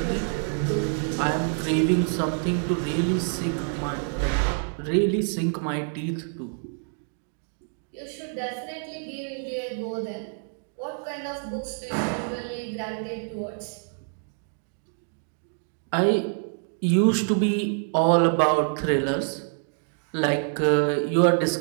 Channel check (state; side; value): silent; left; 59 dB below the other